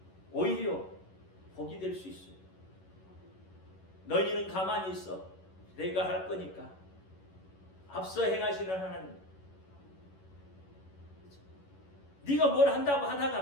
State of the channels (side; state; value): right; late; 11 ms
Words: 오히려 복이 될 수 있어요. 너희는 가만히 있어. 내가 할 거니까. 앞서 행하시는 하나님. 네가 뭘 한다고